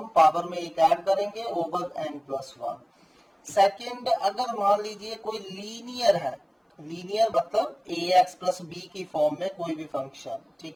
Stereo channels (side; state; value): both; identical; correlation 1.00